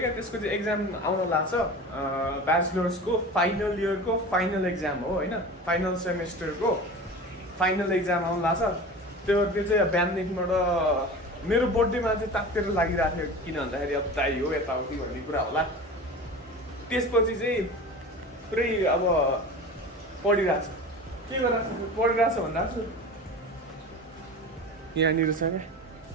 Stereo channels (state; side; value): normal; both; correlation 0.34